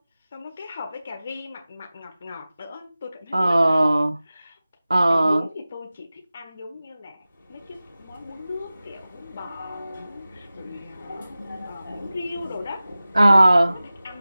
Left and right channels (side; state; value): both; inverted; correlation -0.97